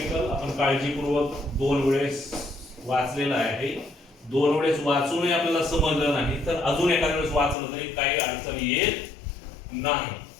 आपण काळजीपूर्वक दोन वेळेस वाचलेला आहे. दोन वेळेस वाचूनही आपल्याला समजलं नाही तर अजून एखाद्या वेळेस वाचलं तरी काही अडचण येत नाही.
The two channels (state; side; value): drops out; right; at 7.6 s